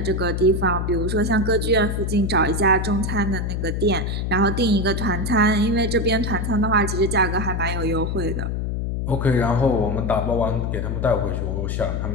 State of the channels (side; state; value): left; noise; hum, 1 dB below the sound